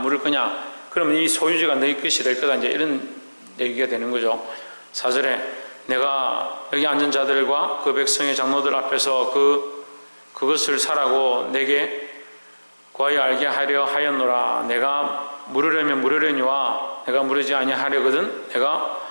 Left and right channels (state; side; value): inverted; both; correlation -1.00